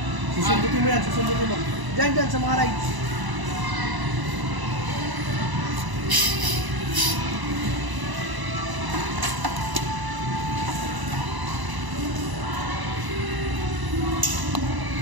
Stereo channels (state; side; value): late; left; 1.0 ms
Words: Susundutin mo yan, susundutin mo. Dyan, sa mga rides.